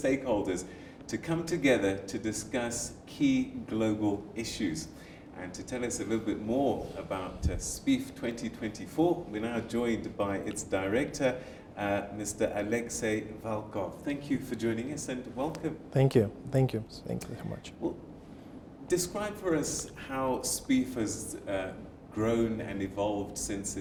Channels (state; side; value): identical; both; correlation 1.00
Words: to come together to discuss key global issues. And to tell us a little bit more about Spief 2024, we're now joined by its director, Mr. Alexey Valkov. Thank you for joining us and welcome. Thank you. Thank you. Thank you so much. Well, describe for us how Spief has grown and evolved since